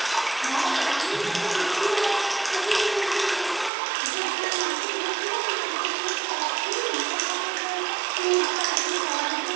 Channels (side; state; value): left; drops out; at 3.7 s